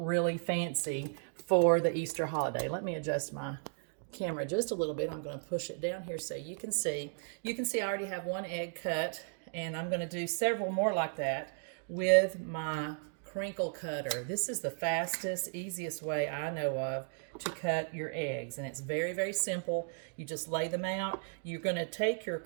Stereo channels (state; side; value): silent; left; 54 dB below the other